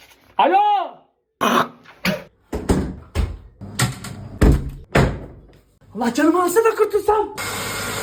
Alo. Allah canımı alsa da kurtulsam.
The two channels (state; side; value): identical; both; correlation 1.00